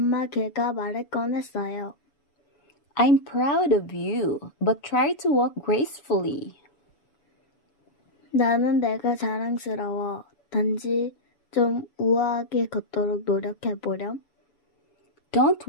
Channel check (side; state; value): right; late; 7.0 ms